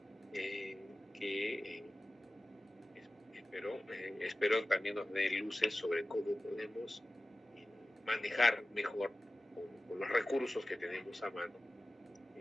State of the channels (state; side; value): normal; both; correlation 0.96